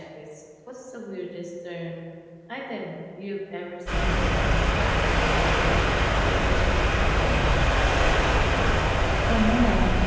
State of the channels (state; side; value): identical; both; correlation 1.00